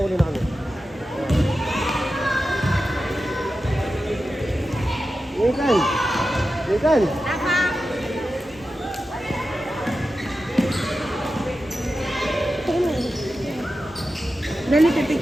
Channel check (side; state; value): both; normal; correlation 0.92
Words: na kami. Ethan! Ethan! Dali,